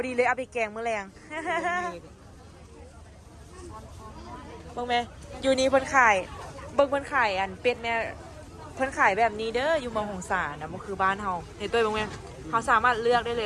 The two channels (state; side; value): identical; both; correlation 1.00